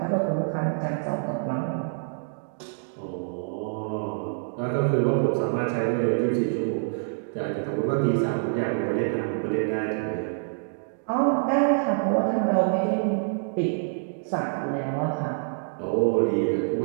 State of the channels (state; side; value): silent; left; digital silence